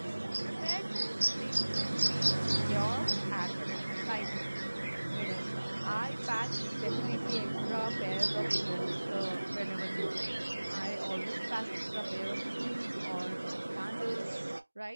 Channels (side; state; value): both; inverted; correlation -1.00